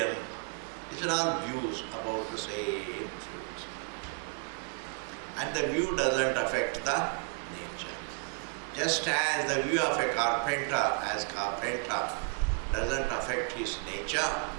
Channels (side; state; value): left; quieter; 35.8 dB